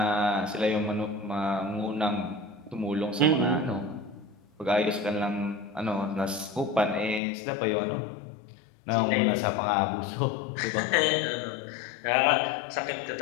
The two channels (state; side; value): drops out; right; at 7.2 s